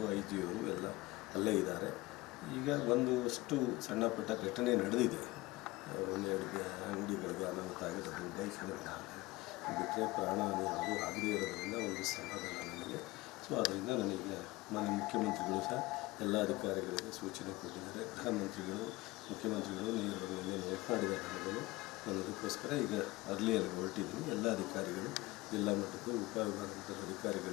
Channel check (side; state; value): right; quieter; 20.7 dB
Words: IG ಅವರು ಎಲ್ಲ ಅಲ್ಲೇ ಇದ್ದಾರೆ. ಈಗ ಒಂದಷ್ಟು ಸಣ್ಣ ಪುಟ್ಟ ಘಟನೆ ನಡೆದಿದೆ. ಒಂದೆರಡು ಅಂಗಡಿಗಳಿಗೆ ಅನಾಹುತ ಆಗಿರೋದು, ಬೈಕ್ಗಳಿಗೆ ಬಿಟ್ಟರೆ ಪ್ರಾಣಹಾನಿ ಯಾವುದೂ ಆಗದೇ ಇರೋದ್ರಿಂದ ಒಂದು ಸಮಾಧಾನ ನನಗೆ. ಸೊ ಅದರಿಂದ ನನಗೆ ಮಾನ್ಯ ಮುಖ್ಯಮಂತ್ರಿಗಳು ಸಹ ಎಲ್ಲ ಅಧಿಕಾರಿಗಳಿಗೆ ಸೂಚನೆ ಕೊಟ್ಟಿದ್ದಾರೆ. ಗೃಹ ಮಂತ್ರಿಗಳು, ಮುಖ್ಯಮಂತ್ರಿಗಳು ನೇರವಾಗಿ ಮಾತನಾಡಿದ್ದಾರೆ ನನಗೂ. ನಾನು ಅದಕ್ಕೋಸ್ಕರ ಈಗ ಅರ್ಲಿಯಲ್ಲಿ ಹೊರಟಿದ್ದೀನಿ. ಎಲ್ಲ ಅಧಿಕಾರಿಗಳು, ಜಿಲ್ಲಾ ಮಟ್ಟದ ಉಪವಿಭಾಗದ